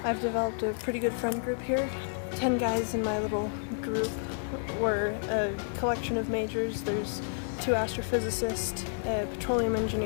I've developed a pretty good friend group here. 10 guys in my little group. We're a collection of majors. There's 2 astrophysicists, a petroleum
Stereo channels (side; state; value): right; silent; digital silence